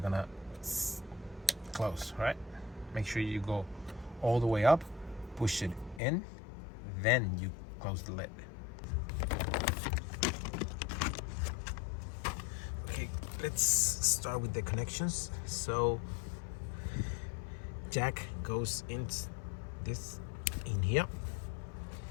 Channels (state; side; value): drops out; right; at 6.0 s